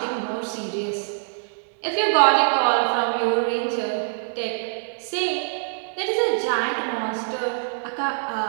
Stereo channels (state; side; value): silent; left; digital silence